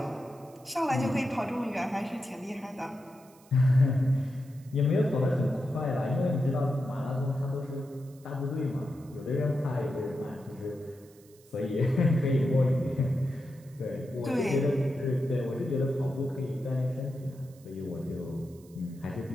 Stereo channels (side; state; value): right; noise; hiss, 27 dB below the sound